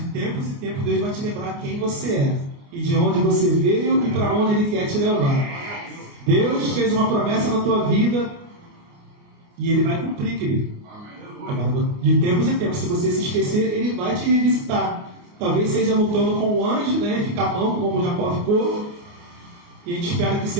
tempos em tempos Deus vai te lembrar quem você é e de onde você veio e para onde Ele quer te levar. Deus fez uma promessa na tua vida e Ele vai cumprir, querido. Agora, de tempos em tempos, se você se esquecer, Ele vai te revisitar. Talvez seja lutando com o anjo, né, ficar manco como Jacó ficou. E a gente espera que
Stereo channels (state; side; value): late; left; 29 ms